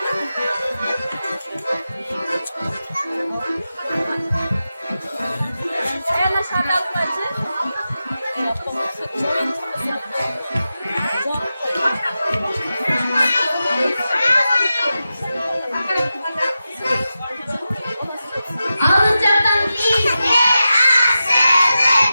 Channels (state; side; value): inverted; both; correlation -0.92